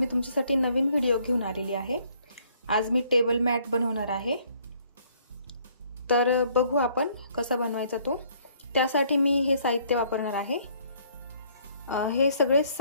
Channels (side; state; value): both; inverted; correlation -0.63